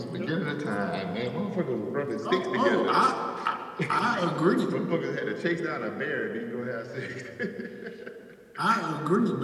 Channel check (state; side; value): identical; both; correlation 1.00